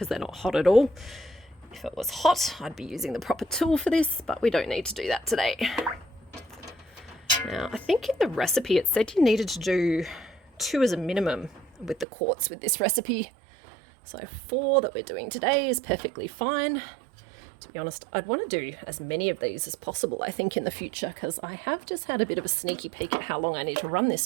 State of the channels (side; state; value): left; drops out; at 12.1 s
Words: they're not hot at all. If it was hot, I'd be using the proper tool for this, but we don't need to do that today. Now, I think in the recipe it said you needed to do 2 as a minimum with the quarts with this recipe. So 4 that we're doing today is perfectly fine. To be honest, I'd want to do as many of these as possible, I think, in the future, because I have just had a bit of a sneaky peek at how long I need to run